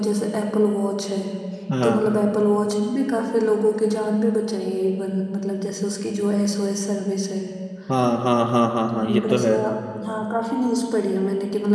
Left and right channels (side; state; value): both; identical; correlation 1.00